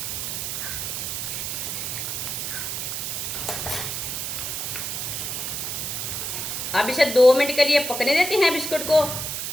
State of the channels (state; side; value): noise; right; hiss, 3 dB below the sound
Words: अब इसे 2 मिनट के लिए पकने देते हैं बिस्कुट को।